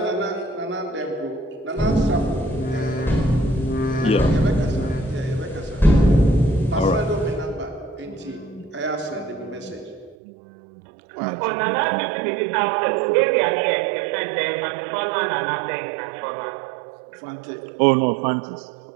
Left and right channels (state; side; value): drops out; left; at 10.2 s